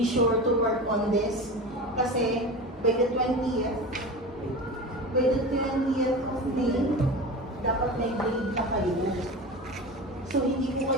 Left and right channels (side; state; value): both; normal; correlation 0.30